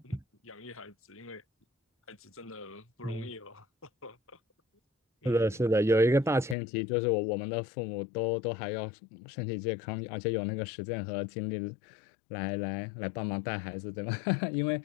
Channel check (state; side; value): drops out; right; at 6.6 s